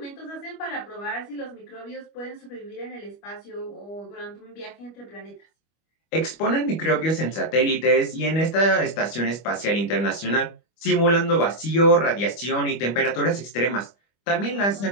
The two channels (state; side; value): late; right; 25 ms